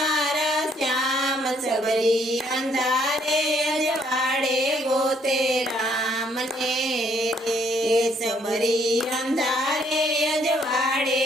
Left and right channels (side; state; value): both; normal; correlation 0.67